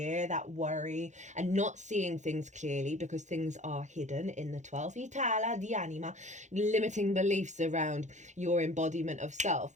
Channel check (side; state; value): left; late; 0.35 ms